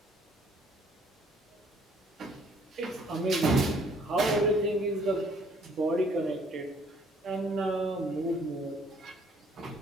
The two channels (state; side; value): normal; both; correlation 0.62